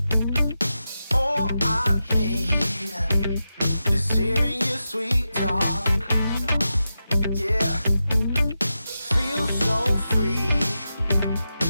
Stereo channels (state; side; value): inverted; both; correlation -0.90